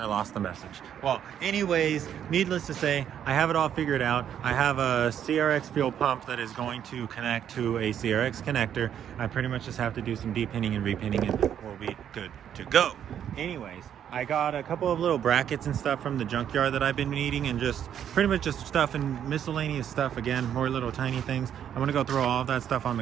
lost the message. Well, anyways, needless to say, I have it all figured out. I have a CRX fuel pump that is going to connect to a CRX connector. I pretty much just have to do some depinning and repinning and we'll be good to go. Anyways, I got a couple of little brackets and stuff from the junkyard that I've been needing, and just pretty much just stuff and miscellaneous stuff. Again, more little tiny things. I'm gonna go throw all of that stuff on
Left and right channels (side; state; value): left; quieter; 9.5 dB